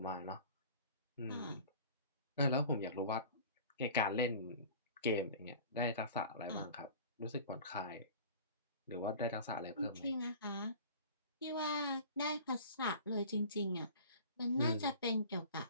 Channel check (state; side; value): inverted; both; correlation -0.42